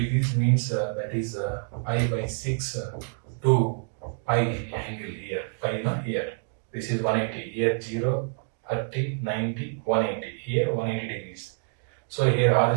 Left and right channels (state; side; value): silent; left; 58 dB below the other